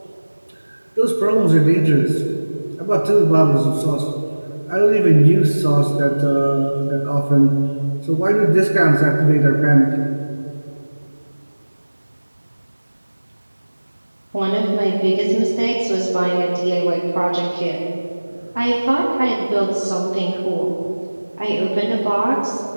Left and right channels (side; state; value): both; inverted; correlation -1.00